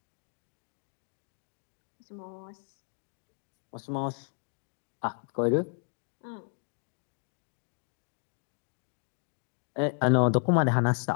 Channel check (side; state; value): right; silent; 56 dB below the other